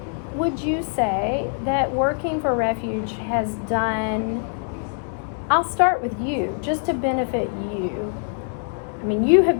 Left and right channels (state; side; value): silent; right; 59 dB below the other